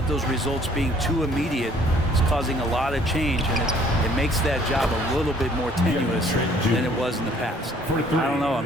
those results being too immediate. It's causing a lot of change, and it makes that job a little bit more tenuous than it was in the past. I don't know.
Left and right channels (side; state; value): both; normal; correlation 0.59